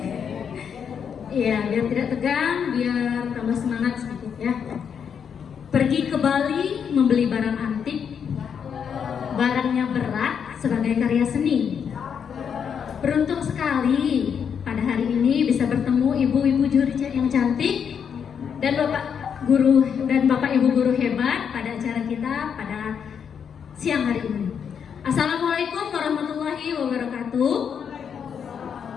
Iya, biar tidak tegang, biar tambah semangat sedikit ya. Pergi ke Bali membeli barang antik, barangnya berat sebagai karya seni. Beruntung sekali pada hari ini bisa bertemu ibu-ibu juri yang cantik dan Bapak Ibu guru hebat pada acara kita pada siang hari ini. Assalamualaikum warahmatullahi wabarakatuh.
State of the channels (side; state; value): right; quieter; 7.4 dB